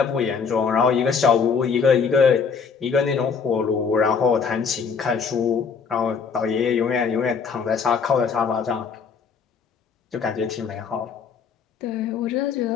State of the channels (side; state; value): right; quieter; 5.8 dB